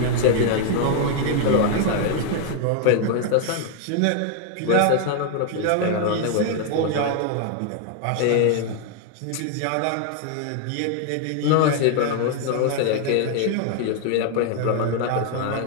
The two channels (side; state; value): both; different; correlation 0.00